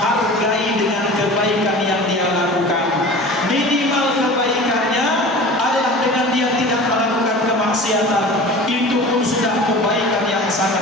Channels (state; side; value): normal; both; correlation 0.38